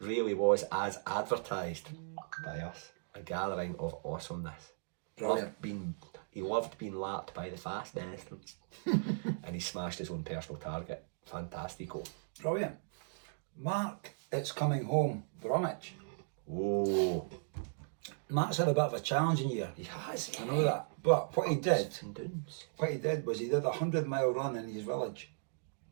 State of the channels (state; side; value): silent; left; digital silence